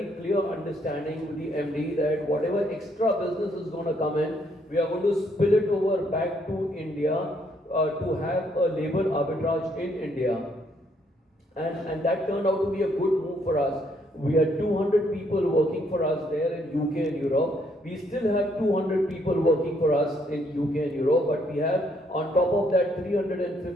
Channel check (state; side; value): normal; both; correlation 0.70